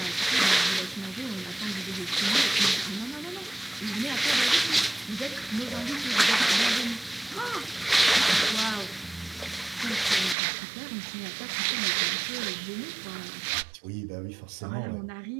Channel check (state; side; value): drops out; left; at 10.4 s